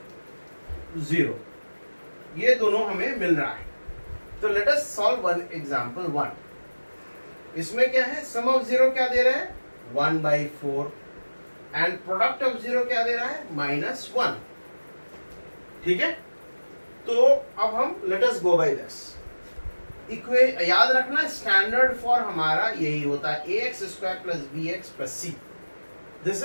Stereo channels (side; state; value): both; inverted; correlation -1.00